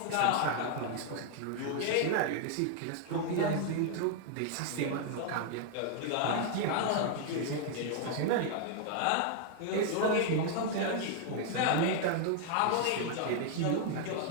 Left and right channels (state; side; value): different; both; correlation 0.00